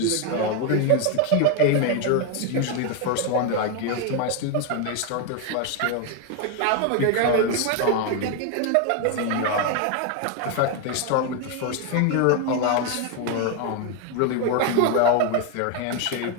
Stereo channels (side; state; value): both; different; correlation 0.01